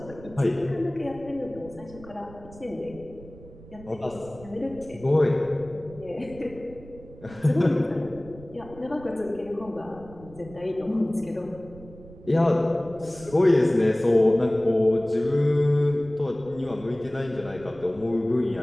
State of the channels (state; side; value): noise; right; rumble, 19 dB below the sound